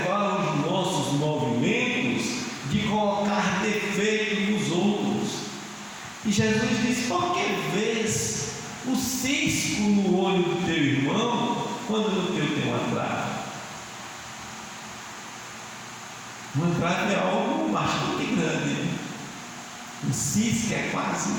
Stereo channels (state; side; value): identical; both; correlation 1.00